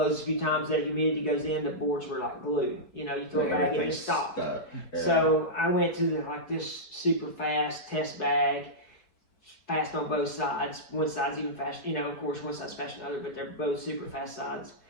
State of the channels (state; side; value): late; right; 4.5 ms